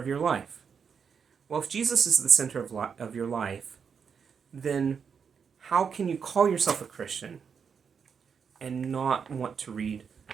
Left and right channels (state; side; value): quieter; left; 6.5 dB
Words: your life. Well, if Jesus is the center of your life, then how can you call yourself a Christian and not want to read